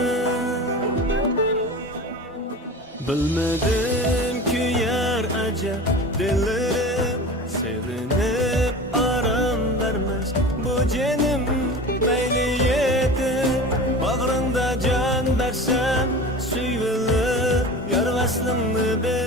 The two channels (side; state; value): both; normal; correlation 0.34